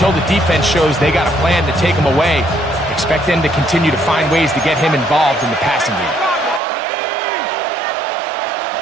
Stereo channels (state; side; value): drops out; left; at 6.6 s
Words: the defense shows they got a plan to take him away, expect them to continue to find ways to get him involved in the passing game.